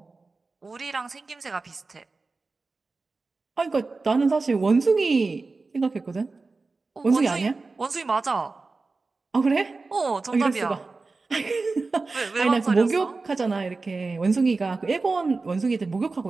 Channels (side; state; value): left; quieter; 3.8 dB